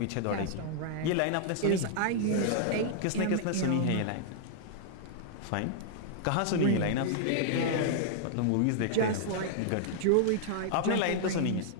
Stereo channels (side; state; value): both; different; correlation -0.01